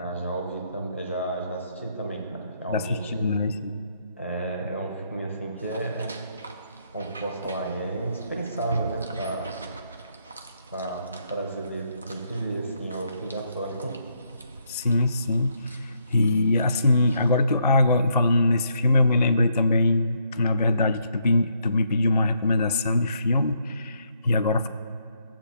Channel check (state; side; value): inverted; both; correlation -0.74